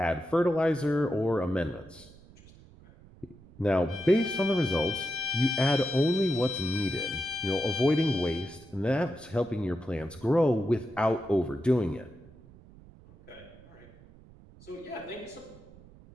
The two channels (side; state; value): right; noise; rumble, 23 dB below the sound